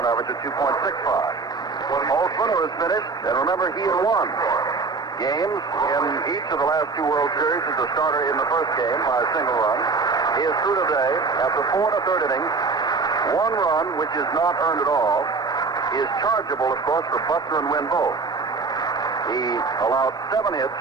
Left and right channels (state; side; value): quieter; left; 4.4 dB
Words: average of 2.65. Holtzman was finished, and remember, he had won games in each of the last 2 World Series as a starter in the first game by a single run. He is through today after 4 1/3 innings. 1 run, which is not earned at all, is chargeable, of course, for Buckner and Wynn both. He allowed 7 hits,